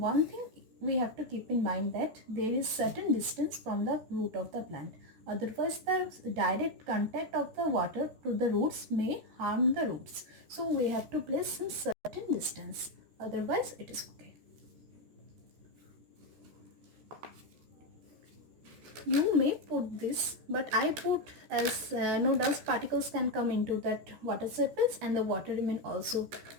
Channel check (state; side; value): late; left; 14 ms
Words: thing we have to keep in mind, that there is certain distance from the root of the plant. Otherwise, the direct contact of the water to the roots may harm the roots. So we have to place some certain distance. Otherwise, it is okay. You may put this, but I put as no dust particles can come into that water surface and the water remain also